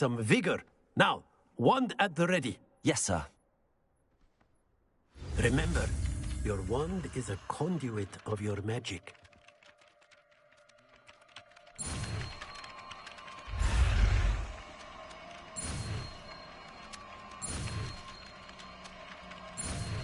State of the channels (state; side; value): identical; both; correlation 1.00